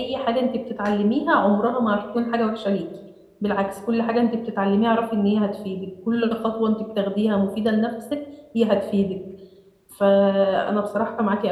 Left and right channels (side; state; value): both; identical; correlation 1.00